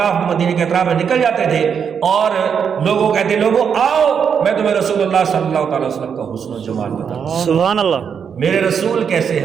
مدینے کے اطراف میں نکل جاتے تھے، اور لوگوں کہتے لوگوں آؤ میں تمہیں رسول اللہ صلی اللہ علیہ وسلم کا حسن و جمال بتاؤں، سبحان اللہ، میرے رسول کیسے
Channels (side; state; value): left; quieter; 7.1 dB